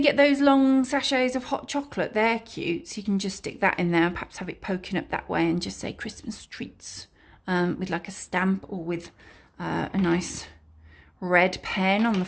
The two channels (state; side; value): identical; both; correlation 1.00